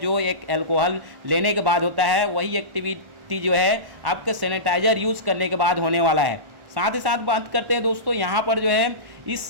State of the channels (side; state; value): left; late; 1.4 ms